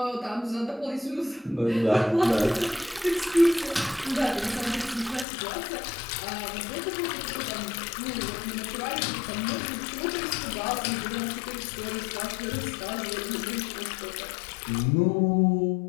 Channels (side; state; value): right; drops out; at 5.2 s